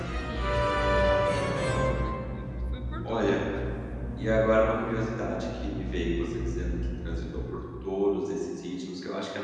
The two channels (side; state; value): both; identical; correlation 1.00